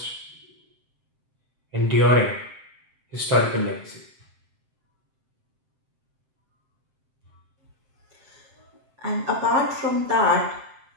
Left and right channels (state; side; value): late; left; 7.7 ms